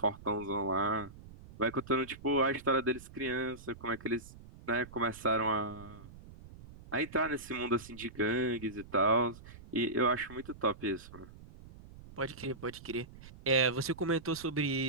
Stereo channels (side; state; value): right; noise; rumble, 18 dB below the sound